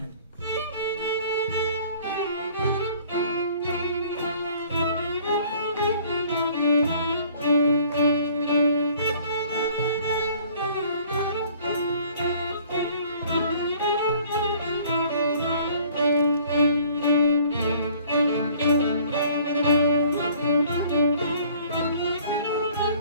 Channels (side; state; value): both; inverted; correlation -0.55